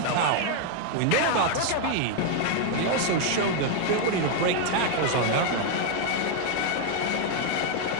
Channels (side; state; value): both; different; correlation 0.00